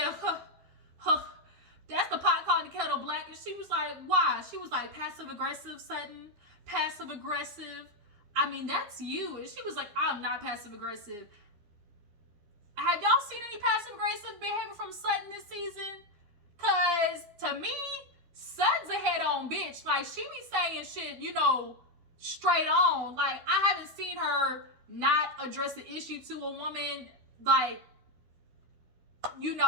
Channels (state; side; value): late; left; 12 ms